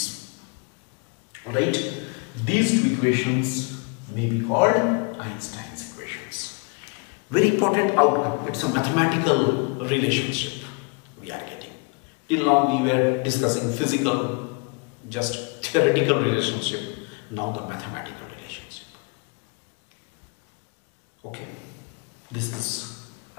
Alright, these two equations may be called Einstein's equations. Very important outcome. It's a mathematical relationship we are getting. Till now we were discussing physical, just theoretical relationship. Now the mathematical relationship. Okay, this is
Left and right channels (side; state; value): right; quieter; 33.4 dB